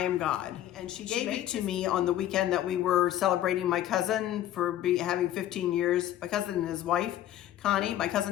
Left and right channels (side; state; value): right; quieter; 12.5 dB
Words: God." And she gave it to me on the weekend that we were celebrating my cousin for having 15 years, my cousin and his wife, Connie, my